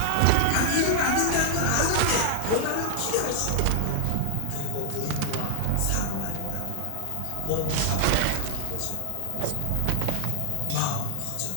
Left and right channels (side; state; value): both; different; correlation 0.00